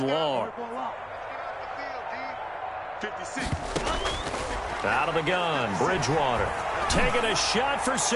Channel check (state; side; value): identical; both; correlation 1.00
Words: long. 56. Out of the gun, Bridgewater. Taking a shot for